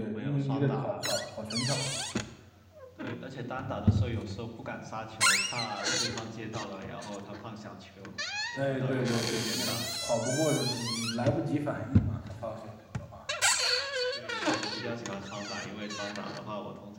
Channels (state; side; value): identical; both; correlation 1.00